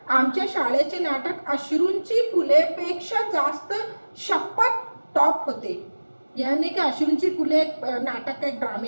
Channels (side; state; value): both; inverted; correlation -1.00